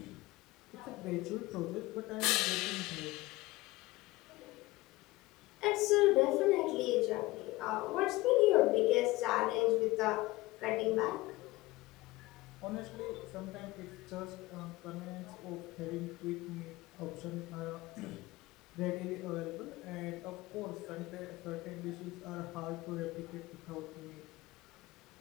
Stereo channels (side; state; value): right; quieter; 20.2 dB